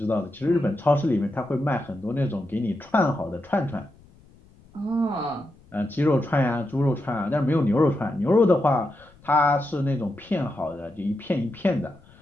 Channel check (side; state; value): left; noise; rumble, 26 dB below the sound